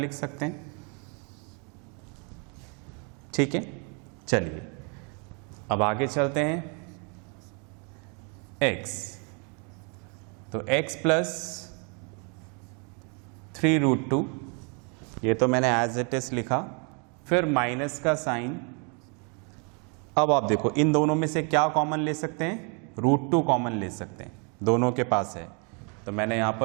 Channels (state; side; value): quieter; left; 35.8 dB